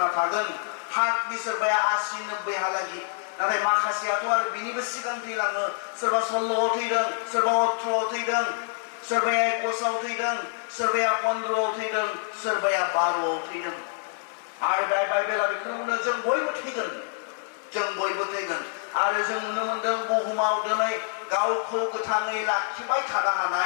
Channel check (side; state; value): right; silent; 60 dB below the other